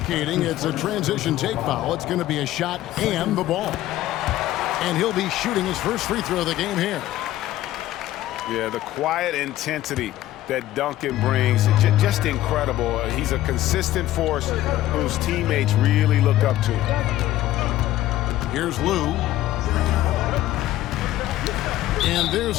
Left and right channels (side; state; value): right; quieter; 14.5 dB